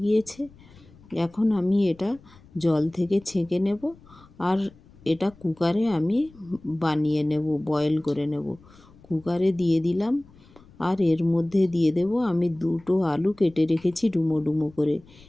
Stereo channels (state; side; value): noise; left; rumble, 25 dB below the sound